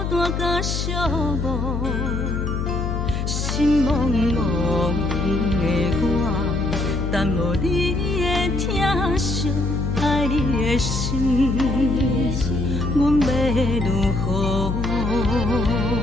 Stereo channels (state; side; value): noise; left; hum, 2 dB below the sound